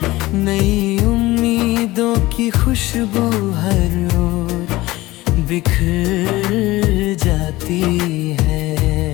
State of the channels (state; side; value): quieter; right; 18.8 dB